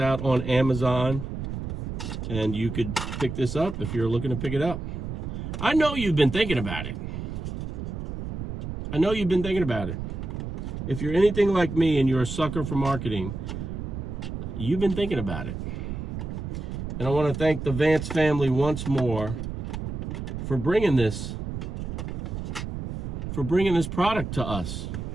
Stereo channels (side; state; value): right; noise; rumble, 5 dB below the sound